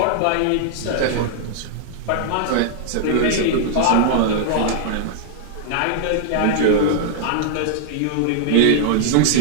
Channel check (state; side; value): different; both; correlation -0.01